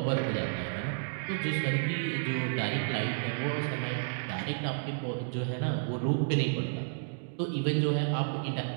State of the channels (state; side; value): silent; left; digital silence